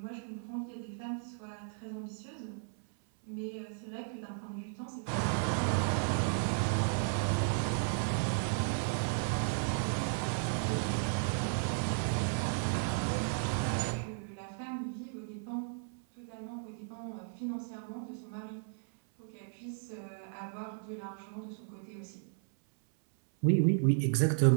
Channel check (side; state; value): left; silent; 55 dB below the other